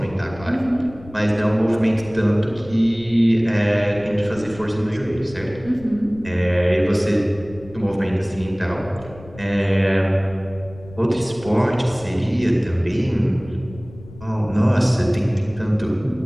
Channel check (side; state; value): left; noise; rumble, 18 dB below the sound